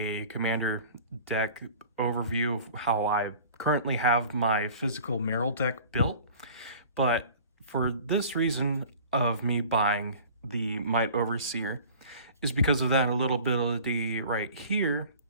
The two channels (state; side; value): inverted; both; correlation -0.44